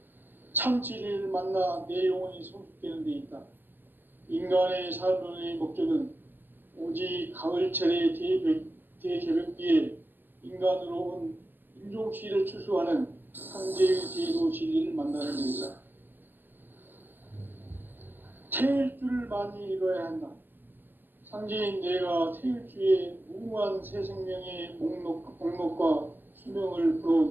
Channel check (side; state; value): left; late; 0.090 ms